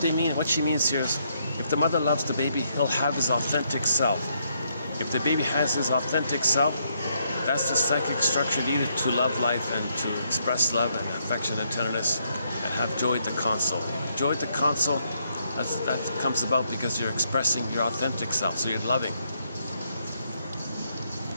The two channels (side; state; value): both; inverted; correlation -0.75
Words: she means here is, if the mother loves the baby, he'll have his authentic self. If the baby has his authentic self, that's the psychic structure needed to love life and to express love and affection and tenderness and have joy at the console. Joy at the console, that comes about because you're expressing your authentic self, so you're loving.